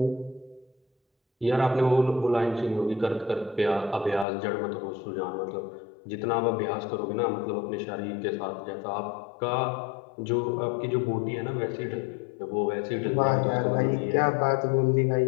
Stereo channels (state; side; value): drops out; right; at 4.2 s